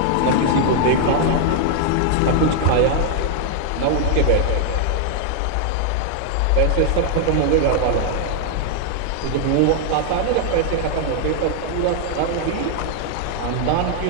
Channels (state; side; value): different; both; correlation 0.00